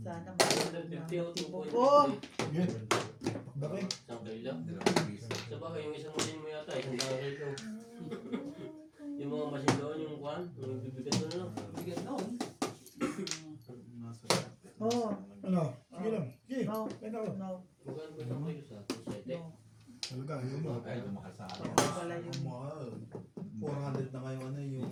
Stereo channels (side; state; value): both; identical; correlation 1.00